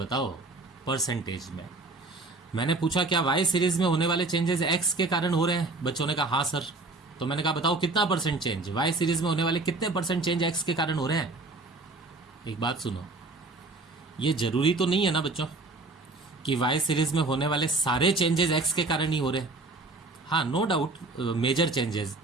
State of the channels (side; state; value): left; quieter; 3.3 dB